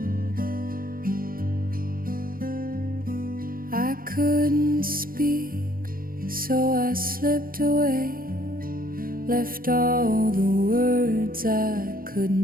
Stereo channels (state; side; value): late; left; 0.42 ms